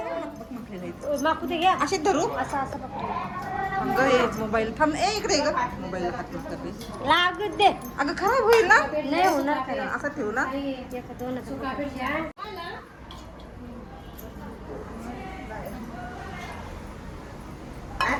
माकू ते घ्या. असे धरू असं असं पकडते. मोबाईल थांब. इकडे ग मोबाईल लागत दे. अगं खराब होईल ना. नाही होणार काय. असं ठेवू ना.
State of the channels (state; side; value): identical; both; correlation 1.00